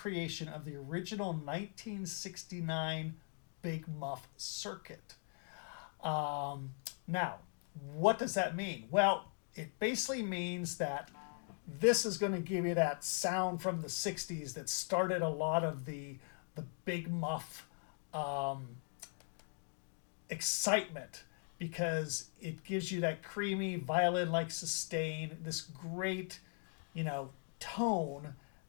of the original 1969 Big Muff circuit. Now, what does that mean? Well, it basically means that this is going to give you that sound from the 60s that started a lot of the Big Muff excitement, because it gives you that creamy violin-like sustain, this great, tone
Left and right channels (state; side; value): silent; right; 51 dB below the other